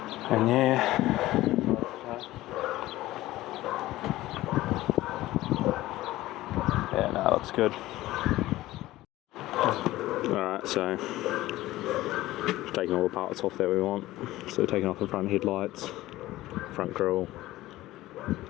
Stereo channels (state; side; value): quieter; right; 16.7 dB